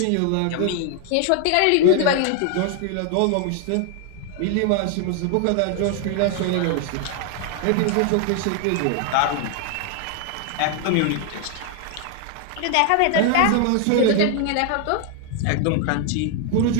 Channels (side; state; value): both; different; correlation 0.00